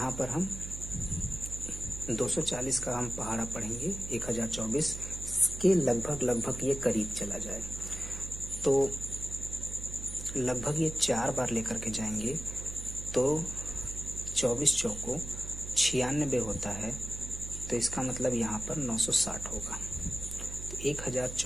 पर हम 240 का हम पहाड़ा पढ़ेंगे, 1024 के लगभग ये करीब चला जाए, तो लगभग ये 4 बार लेकर के जाएंगे तो 24 चौको 96 होता है। तो इसका मतलब यहाँ पर 960 होगा। तो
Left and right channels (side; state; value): right; noise; hum, 9 dB below the sound